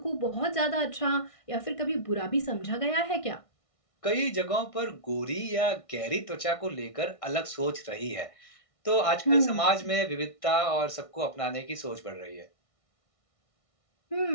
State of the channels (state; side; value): late; right; 1.6 ms